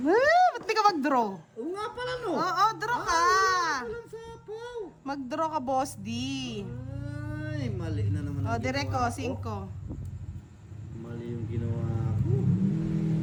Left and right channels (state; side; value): identical; both; correlation 1.00